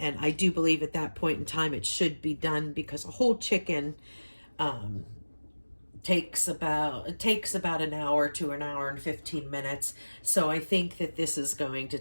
I do believe at that point in time it should be done, because a whole chicken takes about an hour to an hour and 15 minutes. So I think that this is going to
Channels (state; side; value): inverted; both; correlation -1.00